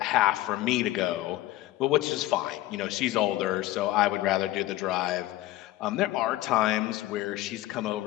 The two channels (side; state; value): right; quieter; 16.2 dB